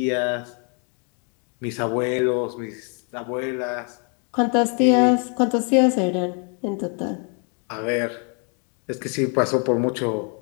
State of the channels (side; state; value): right; quieter; 38.8 dB